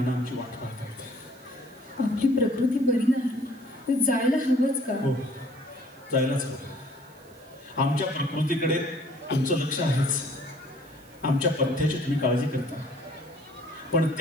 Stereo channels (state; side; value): noise; right; hiss, 27 dB below the sound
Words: आमची वाट पाहतायत. आपली प्रकृती बरी नाही, जायला हवंच का? हो, जायलाच हवं. आमच्या प्रकृतीकडे तुमचं लक्ष आहेच. आमच्या पथ्याची तुम्ही काळजी करता, पण